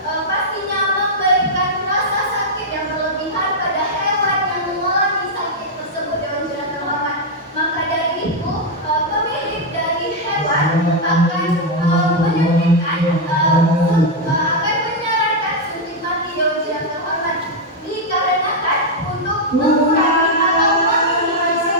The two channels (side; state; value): both; normal; correlation -0.01